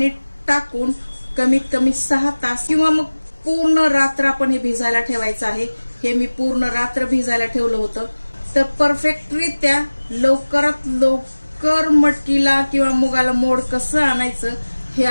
टाकून कमीत कमी 6 तास किंवा मग पूर्ण रात्र आपण हे भिजायला ठेवायचं आहे. हे मी पूर्ण रात्र भिजायला ठेवलं होतं. तर परफेक्टरित्या लवकरात लवकर मटकीला किंवा मुगाला मोड कसं आणायचं हे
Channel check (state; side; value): inverted; both; correlation -1.00